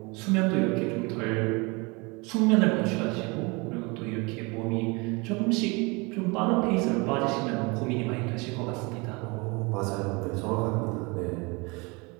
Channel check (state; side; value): quieter; left; 27.6 dB